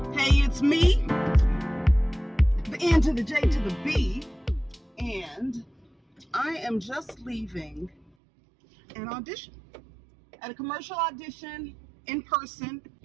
Hey, it's me. The N to the J to the B. And I am just leaving an audition. At a commercial audition in person.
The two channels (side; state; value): left; drops out; at 8.1 s